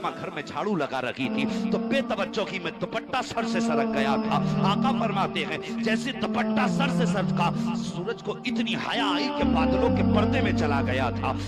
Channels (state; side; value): identical; both; correlation 1.00